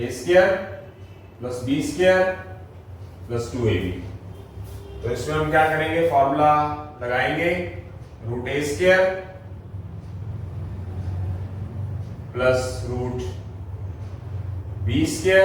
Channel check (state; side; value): identical; both; correlation 1.00